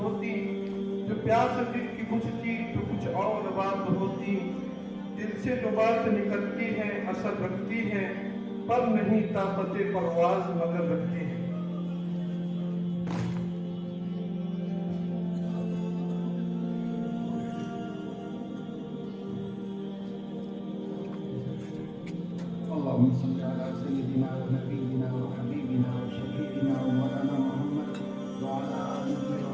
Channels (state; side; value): identical; both; correlation 1.00